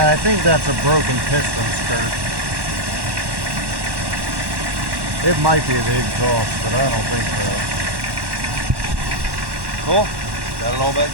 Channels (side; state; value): left; late; 1.1 ms